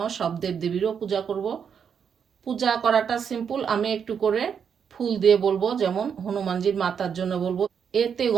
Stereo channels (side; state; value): left; quieter; 7.2 dB